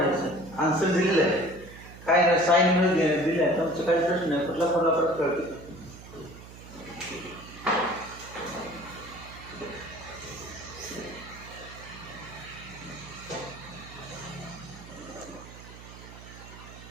आन्सर दिलेलं आहे काय नाही साईन मध्ये दिलं आहे तुमचं काही प्रश्न नाही कुठला फॉर्म्युला परत कळतो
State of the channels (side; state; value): right; noise; hum, 16 dB below the sound